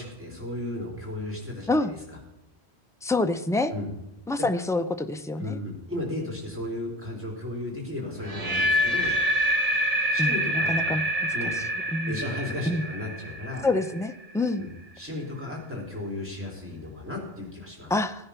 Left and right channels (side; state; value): both; normal; correlation 0.46